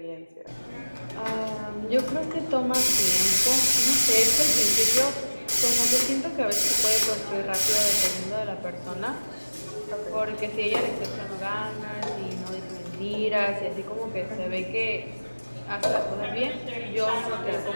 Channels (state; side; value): inverted; both; correlation -1.00